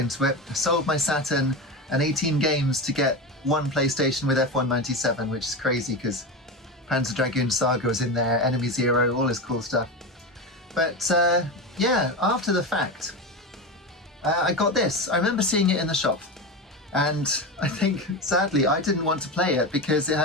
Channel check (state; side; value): normal; both; correlation 0.21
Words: it. I sold my Saturn and 18 games to get one PlayStation with F1 97, which is crazy because Panzer Dragoon Saga was in there, Enemy Zero, all this cool stuff. But yeah, after the fact, I got this. I remember seeing it in the shop. And I think, sadly, I didn't want to play it because it